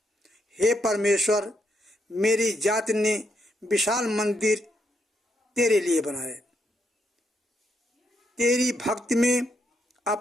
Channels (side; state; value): both; normal; correlation 0.78